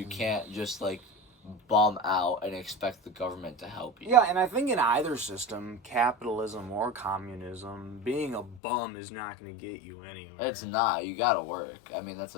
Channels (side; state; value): right; drops out; at 8.6 s